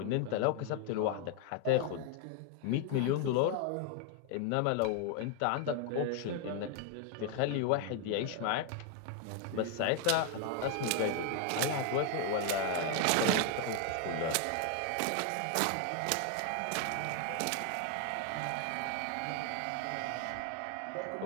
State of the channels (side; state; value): both; different; correlation 0.00